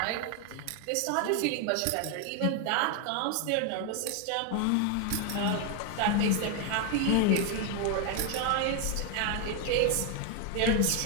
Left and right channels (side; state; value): both; different; correlation 0.00